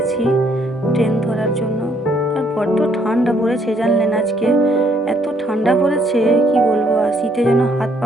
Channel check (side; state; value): both; normal; correlation 0.68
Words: ট্রেন ধরার জন্য। আর বড্ড ঠান্ডা পড়েছে জানলেন, আজকে এত ঠান্ডা পড়েছে কি বলবো, আর শীতে যেন হাত